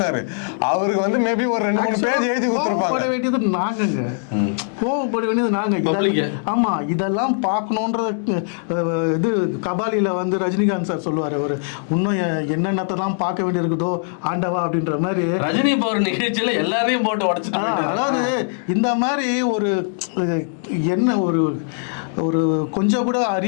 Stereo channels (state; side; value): silent; right; digital silence